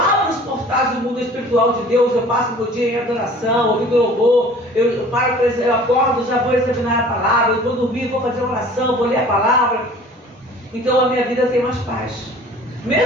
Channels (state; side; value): normal; both; correlation 0.47